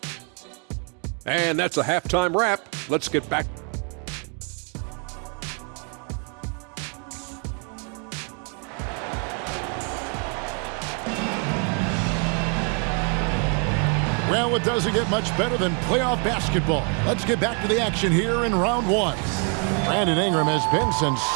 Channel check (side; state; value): left; quieter; 38.8 dB